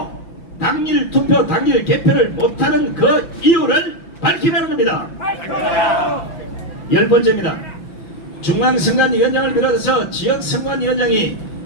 당일 투표, 당일 개표를 못하는 그 이유를 밝히라는 겁니다. 열 번째입니다. 중앙선관위원장을 비롯해서 지역선관위원장이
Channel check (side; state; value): right; late; 5.9 ms